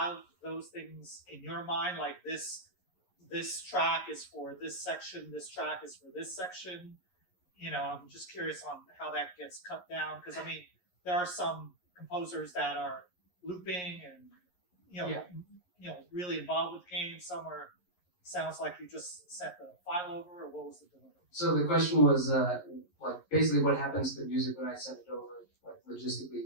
those things in your mind, like this track is for this section, this track is for this section? I'm just curious on how that gets cut down, because I mean, there are some composers that are looping and really involved with the game. Some sounds like you just sent the file over, or what was the delivery? So the question was like basically what happens to the music when I send it over, like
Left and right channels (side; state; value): right; late; 11 ms